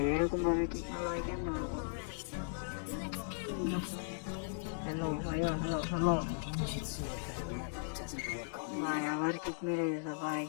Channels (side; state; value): right; silent; digital silence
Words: এরকম ভাবে ঠিক না ভাই, কেন? হ্যালো ভাইয়া, হ্যালো হ্যালো। ভাই আবার কিক মেরে দিয়েছে ভাই।